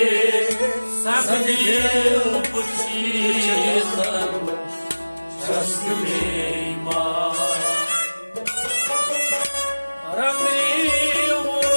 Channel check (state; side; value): inverted; both; correlation -1.00